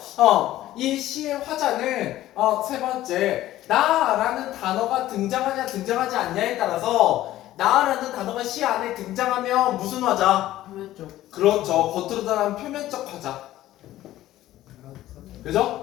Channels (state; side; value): quieter; right; 14.6 dB